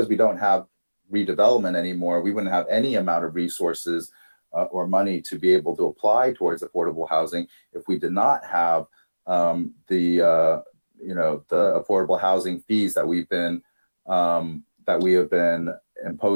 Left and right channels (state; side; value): inverted; both; correlation -1.00